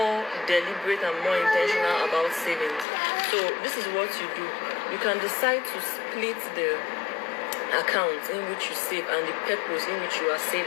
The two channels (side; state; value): right; drops out; at 2.9 s